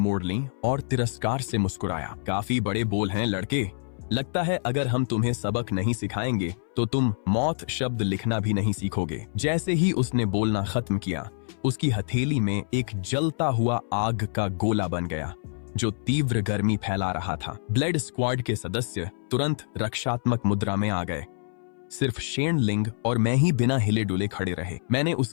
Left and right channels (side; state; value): right; silent; 61 dB below the other